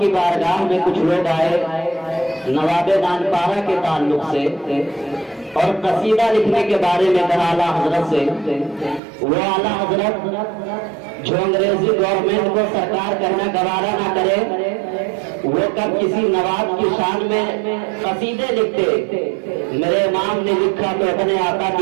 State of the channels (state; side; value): drops out; left; at 9.0 s